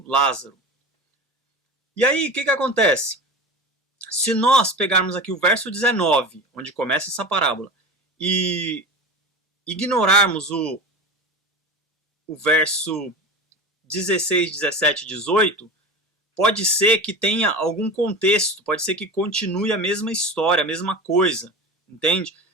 Lázaro. E aí o que acontece? Se nós pegarmos aqui o verso 19, onde começa essa parábola, e ignorarmos o verso 16, 17 e 18, pode ser que tenha algum contexto, pode ser que continue a mesma história, a mesma coisa, entende?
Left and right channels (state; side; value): normal; both; correlation 0.30